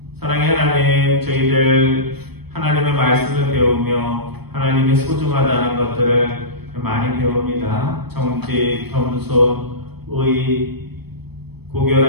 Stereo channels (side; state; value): left; late; 0.97 ms